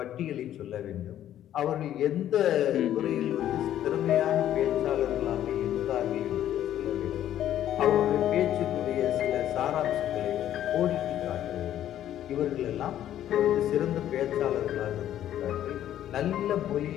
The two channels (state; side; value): quieter; right; 11.6 dB